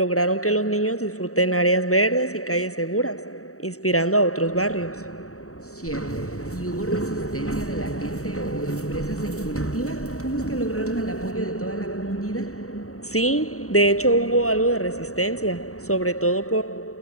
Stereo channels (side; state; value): right; late; 0.64 ms